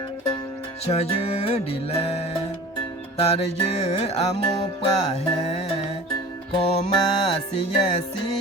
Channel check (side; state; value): both; normal; correlation 0.40